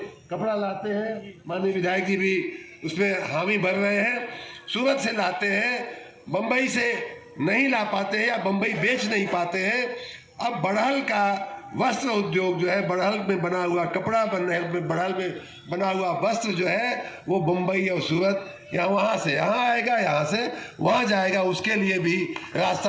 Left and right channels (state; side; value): identical; both; correlation 1.00